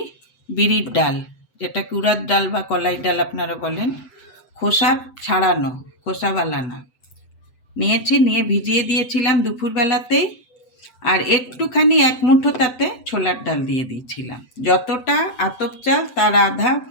বিরির ডাল, যেটাকে উড়ার ডাল বা কলাই ডাল আপনারা বলেন, খোসা ছাড়ানো, খোসাওয়ালা না, নিয়েছি। নিয়ে ভিজিয়ে দিয়েছিলাম দুপুরবেলাতেই। আর একটুখানি 1 মুঠো তাতে ছোলার ডাল দিয়ে দিয়েছিলাম। যতটা আতপ চাল তার আধা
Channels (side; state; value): right; late; 7.9 ms